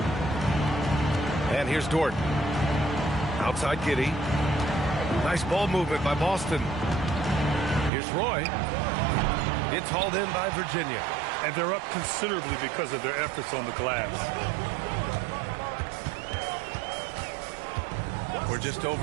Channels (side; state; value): left; drops out; at 7.9 s